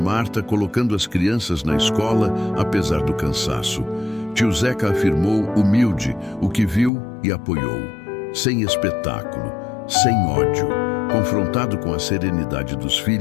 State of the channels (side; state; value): right; drops out; at 6.9 s